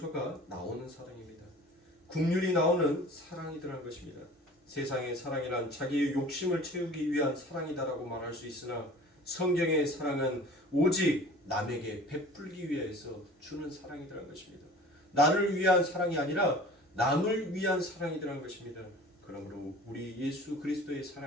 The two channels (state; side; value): normal; both; correlation 0.44